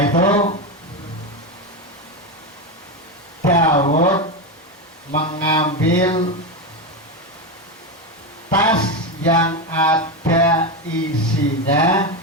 itu Daud mengambil tas yang ada isinya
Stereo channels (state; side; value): normal; both; correlation 0.13